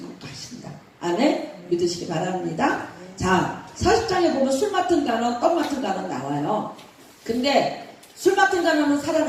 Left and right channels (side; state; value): both; identical; correlation 1.00